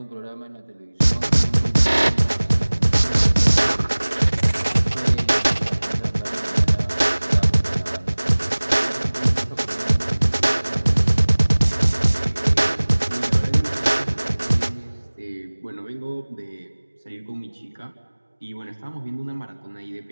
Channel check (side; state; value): both; inverted; correlation -1.00